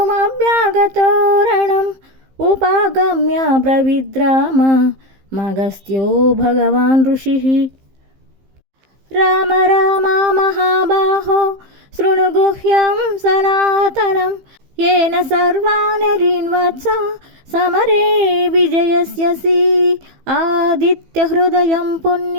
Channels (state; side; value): late; left; 15 ms